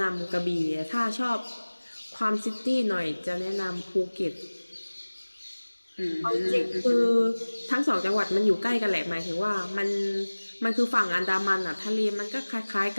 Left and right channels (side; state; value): both; inverted; correlation -1.00